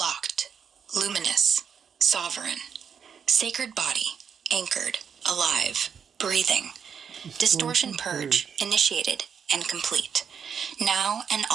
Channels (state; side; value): quieter; left; 7.2 dB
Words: luminous, sovereign. Sacred body, anchored, alive, breathing. Distortion purge, initiated and complete. Now and